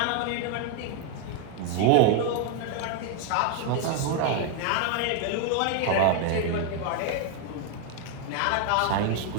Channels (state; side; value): different; both; correlation 0.01